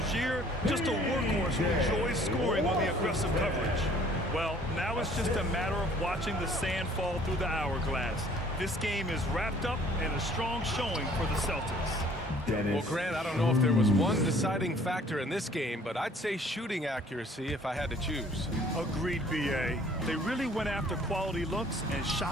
just a workhorse who enjoys scoring on the aggressive coverage. Well, now it's just a matter of watching the sand fall through the hourglass. This game is wrapped up and a strong showing for the Celtics. Well, Grant, I don't know if there was one deciding factor in this game, but I'd say shooting accuracy if I had to choose. Agreed, B.A. They really went after quality looks and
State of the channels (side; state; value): both; normal; correlation 0.56